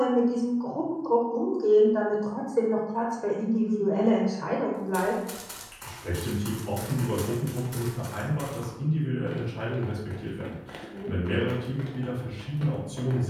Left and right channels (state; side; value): identical; both; correlation 1.00